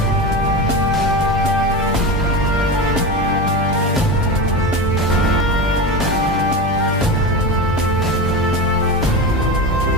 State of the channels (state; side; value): normal; both; correlation 0.23